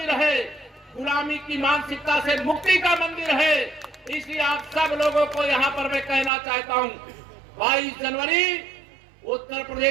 है, गुलामी की मानसिकता से मुक्ति का मंदिर है। इसलिए आप सब लोगों को यहाँ पर मैं कहना चाहता हूँ, 22 जनवरी उत्तर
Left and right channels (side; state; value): left; drops out; at 6.3 s